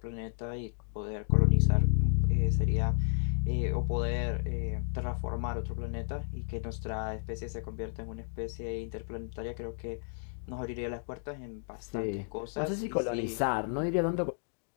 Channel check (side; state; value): right; silent; digital silence